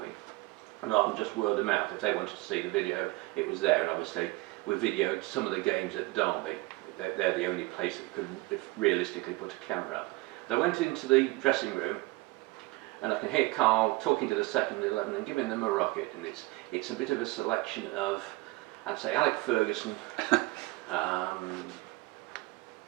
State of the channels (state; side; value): quieter; left; 21.8 dB